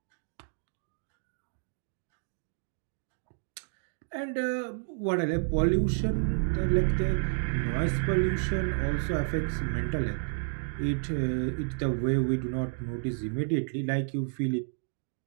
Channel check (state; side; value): silent; left; digital silence